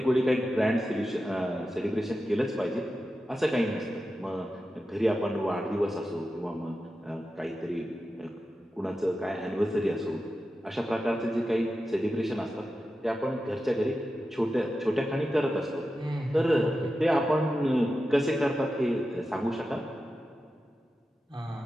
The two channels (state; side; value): normal; both; correlation 0.91